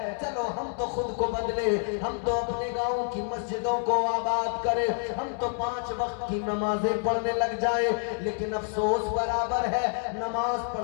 چلو ہم تو خود کو بدلے، ہم تو اپنے گاؤں کی مسجدوں کو آباد کرے، ہم تو 5 وقت کی نمازیں پڑھنے لگ جائے. لیکن افسوس برابر ہے، نماز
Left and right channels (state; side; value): silent; right; 59 dB below the other